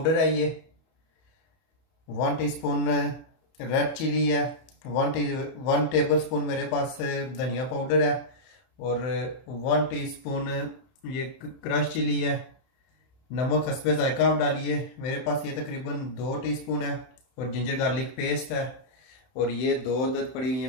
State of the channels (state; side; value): late; right; 31 ms